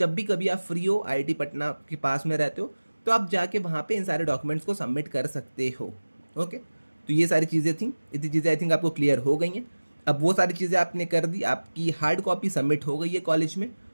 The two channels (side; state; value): both; inverted; correlation -1.00